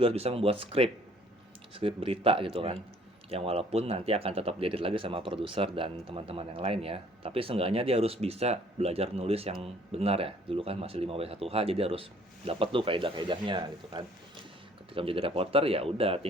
harus bisa membuat skrip berita gitu kan. Yang walaupun nanti akan tetap diedit lagi sama produser dan teman-teman yang lain ya, tapi seenggaknya dia harus bisa belajar nulis yang benar ya. Dulu kan masih 5W1H, jadi harus dapat tuh kaidah-kaidahnya gitu kan. Ketika menjadi reporter ya udah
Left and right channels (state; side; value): normal; both; correlation 0.58